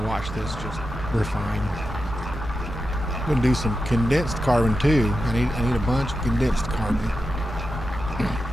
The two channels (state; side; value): normal; both; correlation 0.89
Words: watch this, just refine. I'm gonna do some condensed carbon too. I need a bunch of condensed carbon.